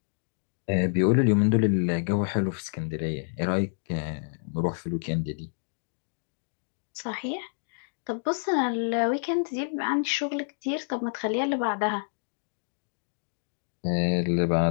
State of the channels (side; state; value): right; silent; digital silence